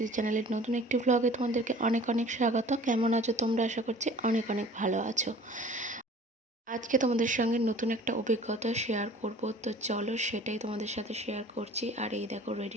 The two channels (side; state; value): both; normal; correlation 0.47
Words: চ্যানেলের নতুন একটি ব্লগে তোমাদেরকে অনেক অনেক স্বাগত। কেমন আছো তোমরা? আশা করছি অনেক অনেক ভালো আছো। আজকে তোমাদের সঙ্গে নতুন একটা অভিজ্ঞতা শেয়ার করব, তো চলো সেটাই তোমাদের সাথে শেয়ার করছি। আর এই দেখো